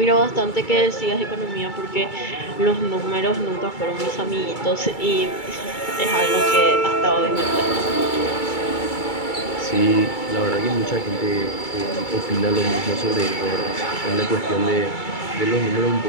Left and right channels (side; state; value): right; late; 2.3 ms